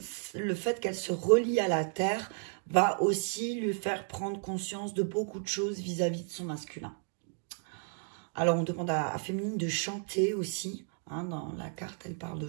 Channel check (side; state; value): left; silent; 56 dB below the other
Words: fait qu'elle se relie à la terre va aussi lui faire prendre conscience de beaucoup de choses vis-à-vis de son masculin. Alors, on demande à féminine de chanter aussi. Hein, dans la carte, elle parle de